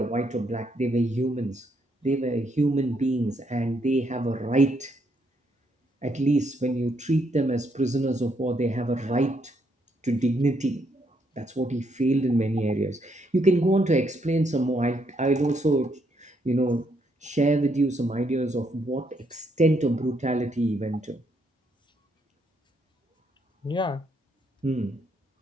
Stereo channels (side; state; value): both; normal; correlation 0.74